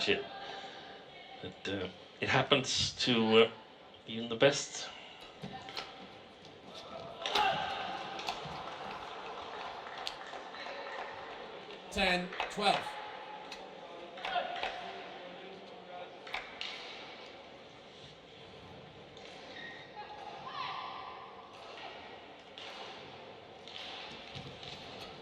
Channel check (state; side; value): identical; both; correlation 1.00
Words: But it happens to even the best. Ten, 12.